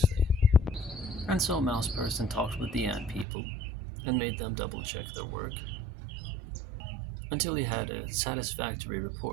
And so Mouse Person talked with the ant people and made them double check their work until he had a satisfactory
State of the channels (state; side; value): drops out; left; at 3.2 s